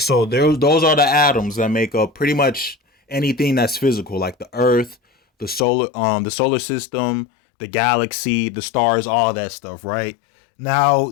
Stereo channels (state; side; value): drops out; right; at 5.7 s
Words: those are the atoms that make up pretty much anything that's physical, like the earth, the solar system, the galaxy, the stars, all that stuff, right? Now